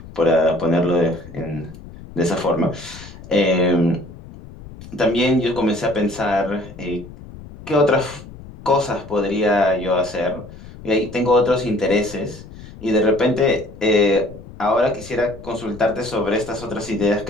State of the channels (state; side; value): noise; left; rumble, 16 dB below the sound